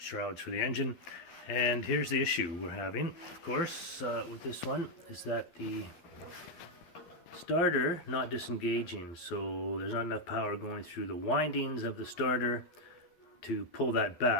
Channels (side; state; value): right; late; 12 ms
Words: for the engine. And here's the issue we're having, of course, with this one, is that the starter not disengaging. So there's not enough power going through the windings of the starter to pull that